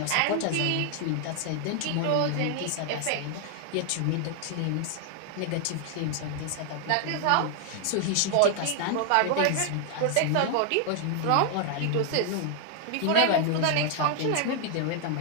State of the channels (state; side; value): different; both; correlation 0.00